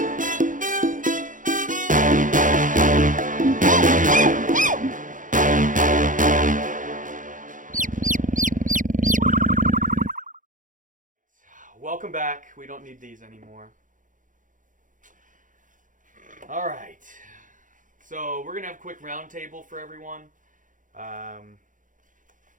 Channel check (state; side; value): late; left; 0.38 ms